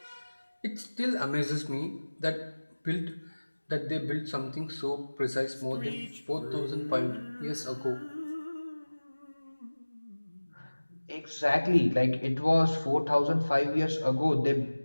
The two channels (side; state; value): both; inverted; correlation -1.00